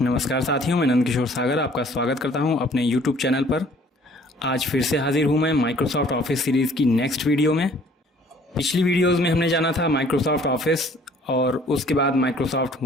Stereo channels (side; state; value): both; normal; correlation 0.56